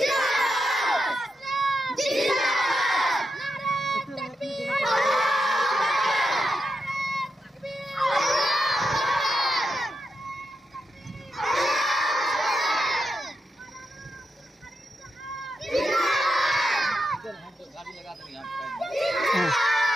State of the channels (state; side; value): normal; both; correlation 0.86